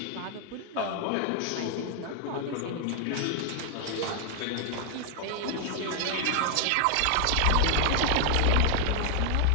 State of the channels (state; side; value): different; both; correlation 0.00